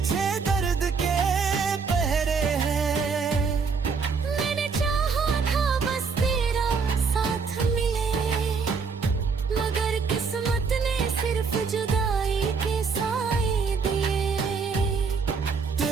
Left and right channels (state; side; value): quieter; left; 5.2 dB